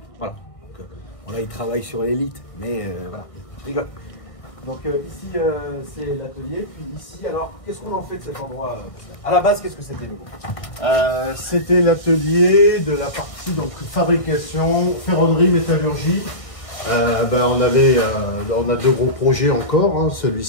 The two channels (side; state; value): right; late; 1.6 ms